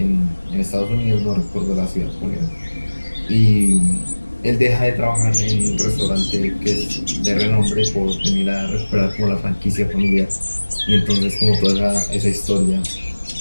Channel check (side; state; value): both; inverted; correlation -1.00